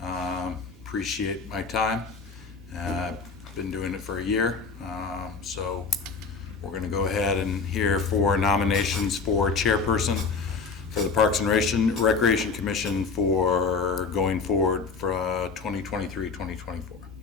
Appreciate my time. Been doing it for a year, so we're going to go ahead and hear 4 nominations for chairperson for the Parks and Recreation Commission for going forward for 2023-2024.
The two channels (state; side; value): quieter; right; 4.9 dB